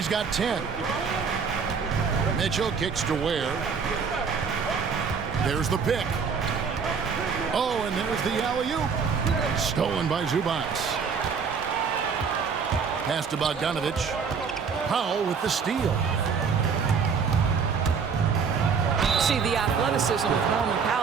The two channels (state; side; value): quieter; left; 5.9 dB